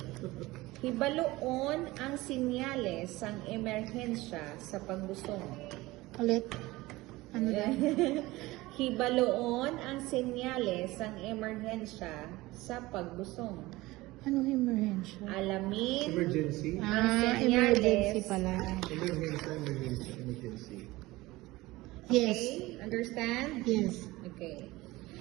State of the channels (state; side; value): quieter; left; 19.6 dB